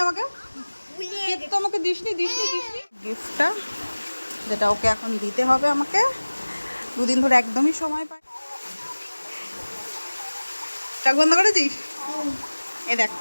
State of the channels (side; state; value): both; inverted; correlation -1.00